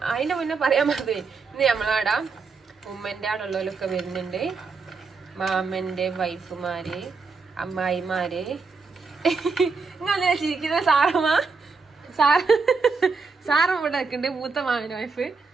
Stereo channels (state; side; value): quieter; left; 4.6 dB